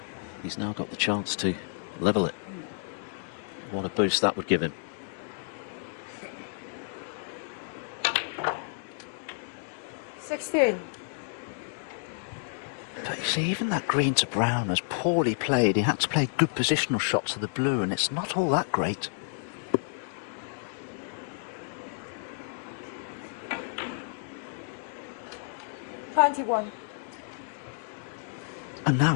he's now got the chance to level it. What a boost that would give him. 16. But you see, even that green to brown was poorly played. He had to play good positional shots to the blue, and it's not all that great. Twenty-one. And now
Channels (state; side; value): silent; right; digital silence